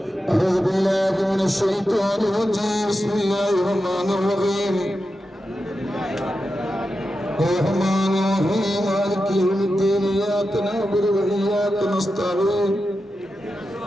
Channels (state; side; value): normal; both; correlation 0.90